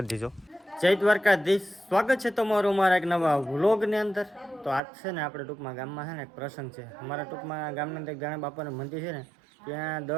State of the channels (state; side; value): drops out; left; at 4.8 s